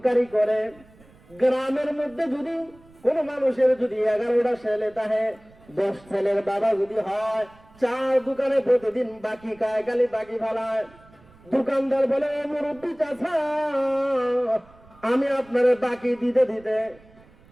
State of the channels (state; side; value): noise; right; rumble, 26 dB below the sound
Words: করে। গ্রামের মধ্যে যদি কোন মানুষের যদি 11টা ছেলে থাকে, 10 ছেলের বাবা যদি হয়, চার দোকানে প্রতিদিন বাকি খায়, খালি বাকি ফালায়। দোকানদার বলে মুরব্বী চাচা আমি আপনারে বাকি দিতে দিতে